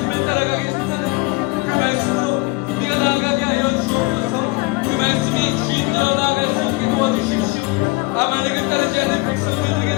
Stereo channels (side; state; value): right; quieter; 25.9 dB